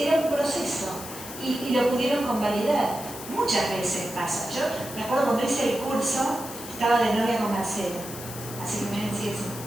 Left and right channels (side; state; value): left; noise; hiss, 11 dB below the sound